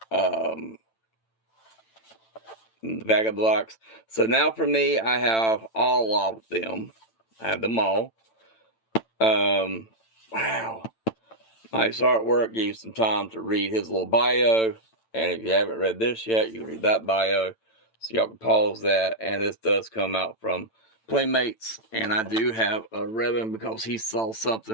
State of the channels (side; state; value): right; late; 9.0 ms